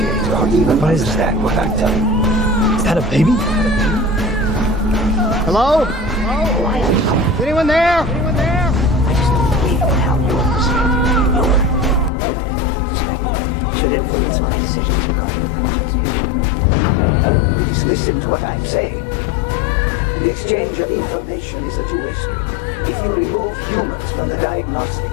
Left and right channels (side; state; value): right; drops out; at 12.1 s